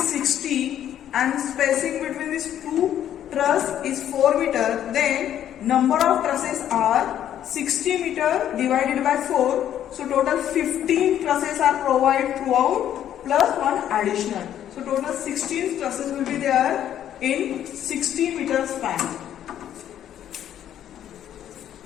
60 and spacing between these 2 truss is 4 meter, then number of trusses are 60 meter divided by 4. So total 15 trusses are provided throughout plus 1 additional. So total 16 trusses will be there in 60 meter span.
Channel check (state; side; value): quieter; right; 10.7 dB